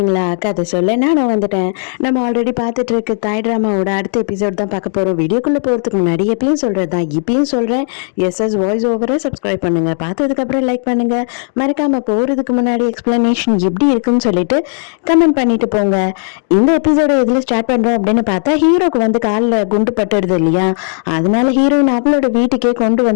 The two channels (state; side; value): silent; right; digital silence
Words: கதை சொல்ல நான் வந்துட்டேன். நம்ம ஆல்ரெடி பார்த்துட்டு இருக்க தாய் ட்ராமாவோட அடுத்த எபிசோட் தான் பார்க்க போகிறோம். வீடியோக்குள்ளே போகிறதுக்கு முன்னாடி எப்பயும் சொல்கிறது தான் இப்பயும் சொல்கிறேன். எஸ்எஸ் வாய்ஸ் ஓவரை சப்ஸ்கிரைப் பண்ணுங்கள், பார்த்ததுக்கப்புறம் லைக் பண்ணுங்கள், மறக்காமல் போகிறதுக்கு முன்னாடி எக்ஸ்ப்ளனேஷன் எப்படி இருக்குன்னு சொல்லிட்டு கமெண்ட் பண்ணிட்டு போங்க. இந்த எபிசோட எதில் ஸ்டார்ட் பண்ணுறோம் அப்படின்னு பார்த்தா, ஹீரோக்கு வந்து காலில் குண்டு பட்டுடுது இல்லையா, அதனால ஹீரோயின் அவளோட வீட்டுக்கே கொண்டு